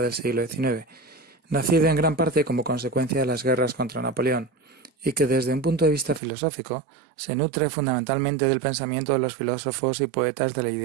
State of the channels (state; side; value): drops out; left; at 6.2 s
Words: del siglo XIX, nacido en gran parte como consecuencia de las guerras contra Napoleón, y que desde un punto de vista filosófico se nutre fundamentalmente del pensamiento de los filósofos y poetas del